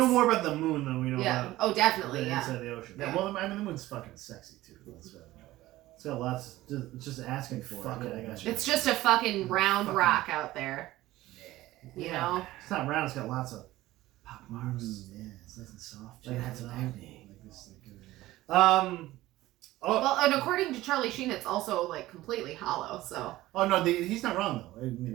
more about the moon than we know Yeah. about Oh, the definitely. Yeah. inside the ocean. yeah, well, I mean, the moon's fucking sexy too. Let's know that. It's got lots. It's just asking for Fuck it. it, Yeah, I got you. It's just a fucking round Fucking- rock out there. You know. It's not round. It's got lots of pop marks. Yeah, it's nice and soft. Like Yeah, that's it's acne. like this, Oh, Well, and according to Charlie Sheen, it's also like completely hollow. So Oh no, he's not wrong though. I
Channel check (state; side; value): quieter; left; 16.7 dB